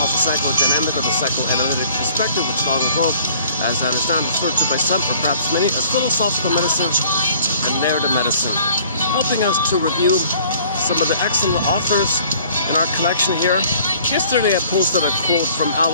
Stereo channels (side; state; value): both; inverted; correlation -0.53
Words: psychodynamic, or the psychoanalytic perspective, which long ago, as I understand, referred to by some, or perhaps many, as philosophical medicine and narrative medicine, helping us to review some of the excellent authors in our collection here. Yesterday I posted a quote from